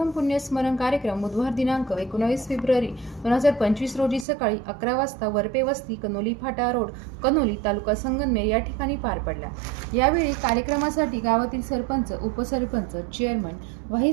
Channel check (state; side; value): drops out; left; at 4.2 s